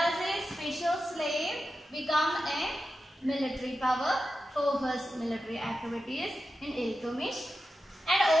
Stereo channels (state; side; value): normal; both; correlation 0.91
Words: a special slave, become a military power for his military activities in Iltutmish. And